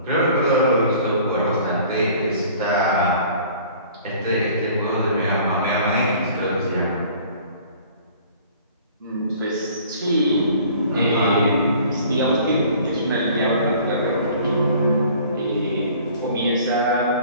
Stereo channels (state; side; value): inverted; both; correlation -0.51